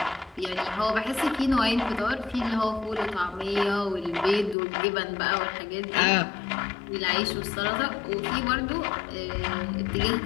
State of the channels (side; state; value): right; drops out; at 4.5 s